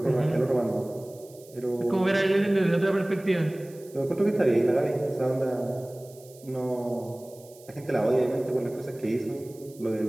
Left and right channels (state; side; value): noise; right; hiss, 24 dB below the sound